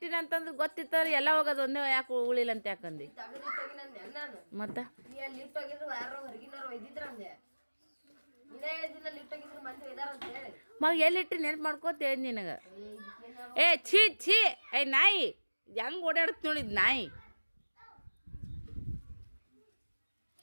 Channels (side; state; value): both; inverted; correlation -1.00